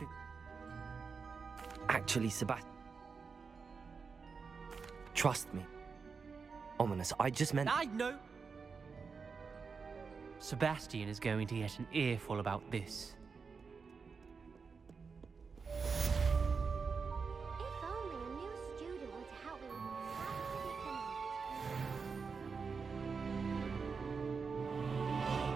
Actually, Sebastian, Trust me. Ominous, I just meant... I know! Sebastian is going to get an earful about this. If only a new student were to help me with my predicament.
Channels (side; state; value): left; quieter; 5.2 dB